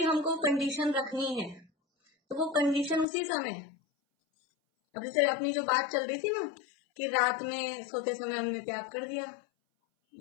हमको कंडीशन रखनी है तो वो कंडीशन उसी समय, अब जैसे अपनी जो बात चल रही थी ना कि रात में सोते समय हमने त्याग कर दिया,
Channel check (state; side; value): drops out; right; at 3.1 s